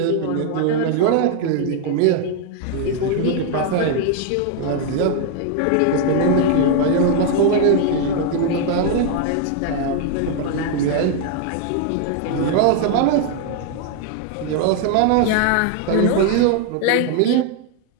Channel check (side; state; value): both; different; correlation 0.00